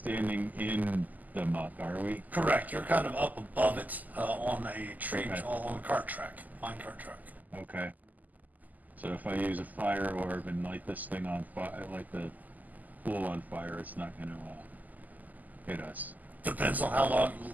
in the muck, are we? Correct. You're kind of up above it on a tree, Okay. on a cart track, mine cart track. Okay. So if I use a fire orb and light this thing on fire, light the pool on fire, it's not going to hit us. Depends on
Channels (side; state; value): left; late; 0.081 ms